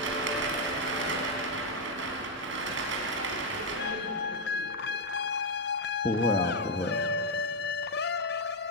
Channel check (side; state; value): both; normal; correlation 0.02